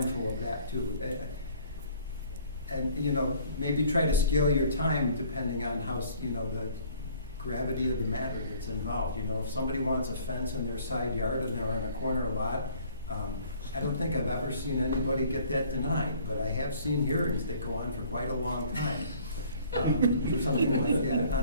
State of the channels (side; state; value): both; inverted; correlation -0.55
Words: of that too. And, you know, maybe try to scale your time depending on how, you know, the gravity of the matter that's involved. You know, if somebody wants a fence in their side yard and they're in a corner lot, I don't think I've ever seen anybody get that denied, but I have seen hearings that go on for quite a long time. For something like that.